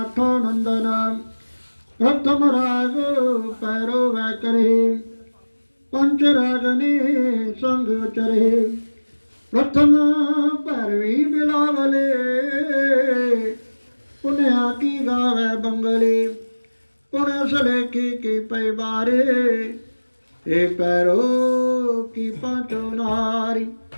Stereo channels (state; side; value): inverted; both; correlation -1.00